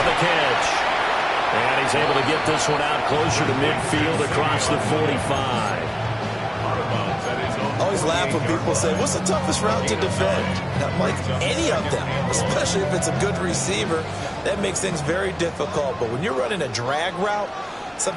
the catch. And he's able to get this one out closer to midfield across the 45. I always laugh when people say, what's the toughest route to defend? Not like any of them, especially if it's a good receiver. That makes things very difficult. But when you're running a drag route,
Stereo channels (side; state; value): both; identical; correlation 1.00